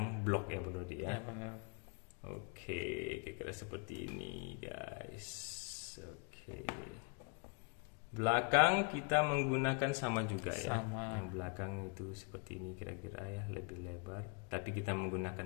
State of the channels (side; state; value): right; quieter; 33.1 dB